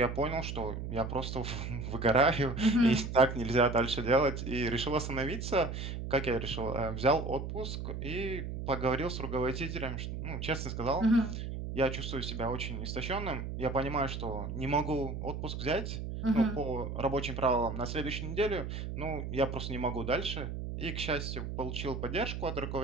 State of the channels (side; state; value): right; noise; hum, 5 dB below the sound